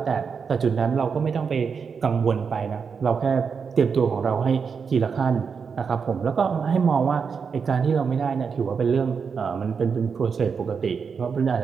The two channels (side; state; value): left; quieter; 5.9 dB